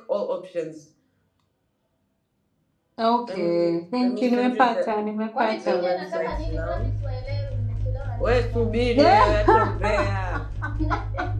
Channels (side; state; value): both; identical; correlation 1.00